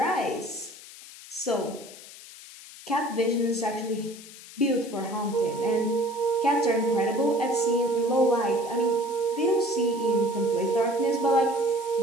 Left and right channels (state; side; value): noise; left; hiss, 17 dB below the sound